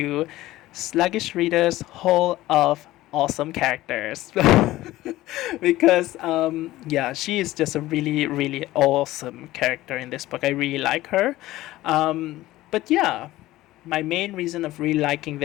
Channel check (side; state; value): right; quieter; 16.6 dB